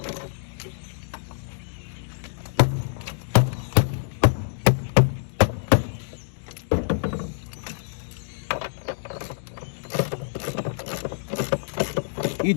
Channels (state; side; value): silent; right; digital silence